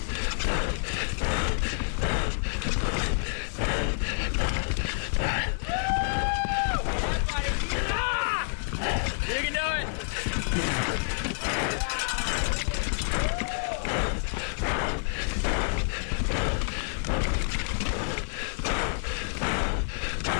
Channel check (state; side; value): silent; right; 59 dB below the other